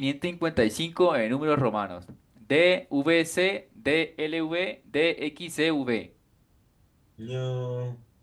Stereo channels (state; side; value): identical; both; correlation 1.00